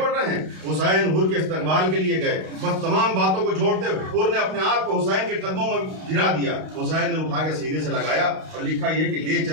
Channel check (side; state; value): left; late; 32 ms